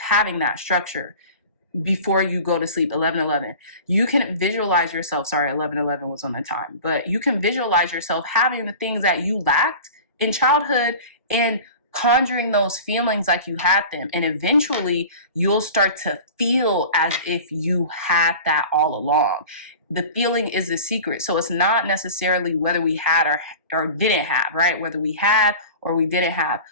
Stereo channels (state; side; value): inverted; both; correlation -0.38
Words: that structure before you go to sleep, 11:11. You can visualize yourself, sorry, 11:11 was on the time, but you can visualize yourself having the things that you lacked in childhood and conjuring those feelings like you had them. And eventually you'll start to feel as if you had that all along. The feeling is the secret. So it's not necessarily whether we had or didn't have, right? Whether we had or we didn't have.